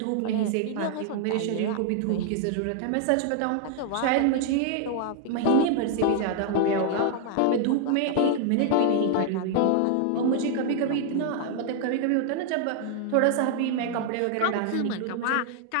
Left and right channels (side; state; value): both; different; correlation 0.00